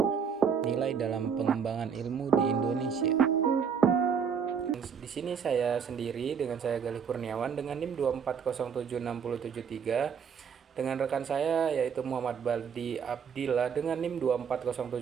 nilai dalam pengembangan ilmu di Indonesia. Di sini saya sendiri dengan saya Galih Kurniawan dengan NIM 2407673 dengan rekan saya yaitu Muhammad Baldi Abdillah dengan NIM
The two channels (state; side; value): quieter; left; 6.9 dB